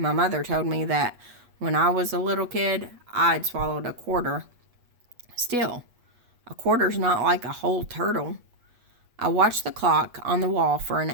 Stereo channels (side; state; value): left; late; 8.2 ms